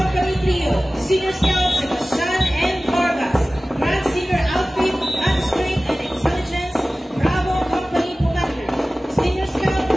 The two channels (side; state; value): both; normal; correlation 0.97